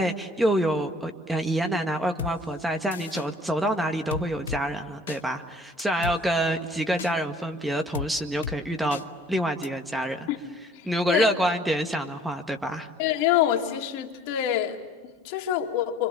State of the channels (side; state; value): both; normal; correlation 0.53